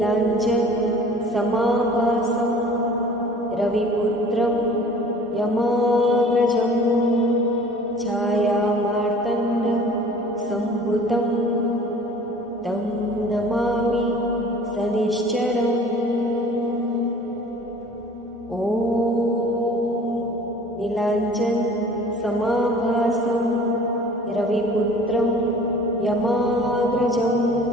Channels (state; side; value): normal; both; correlation 0.47